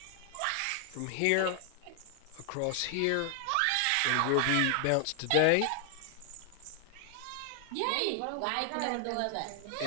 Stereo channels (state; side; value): different; both; correlation 0.00